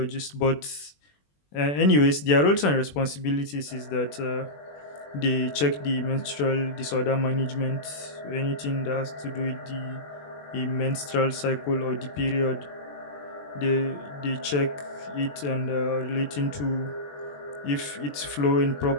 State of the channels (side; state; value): right; late; 20 ms